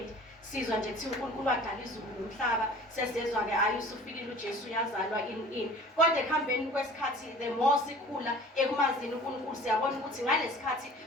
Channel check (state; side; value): normal; both; correlation 0.46